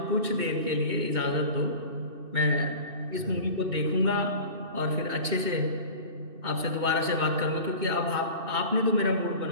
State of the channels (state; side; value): late; left; 2.6 ms